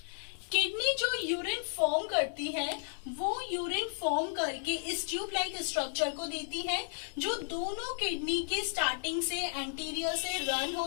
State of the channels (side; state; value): right; silent; digital silence